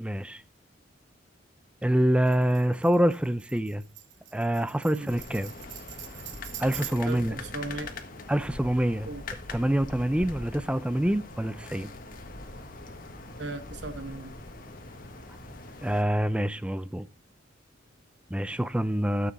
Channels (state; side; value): normal; both; correlation 0.93